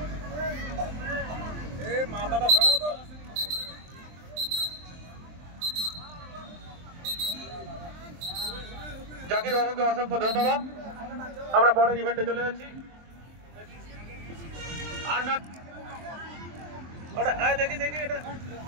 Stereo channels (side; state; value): left; late; 23 ms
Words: মাথাটা সরাও তো। জাকির বাবুকে অসংখ্য ধন্যবাদ। আমরা পরের ইভেন্টে চলে যাচ্ছি। দেখি দেখি এটা